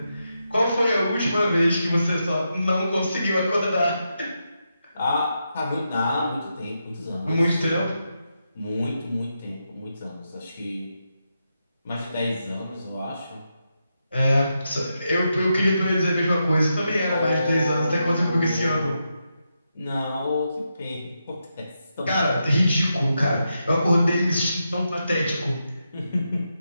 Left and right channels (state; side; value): inverted; both; correlation -0.86